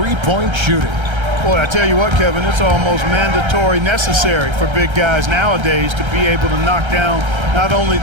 shooting. Boy, I tell you what, Kevin, it's almost mandatory necessary for big guys nowadays to be able to knock down not only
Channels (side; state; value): left; late; 1.3 ms